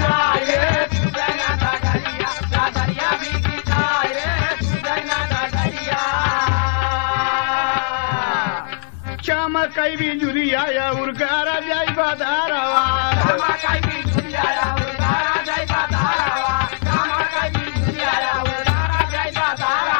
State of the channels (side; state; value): right; silent; 66 dB below the other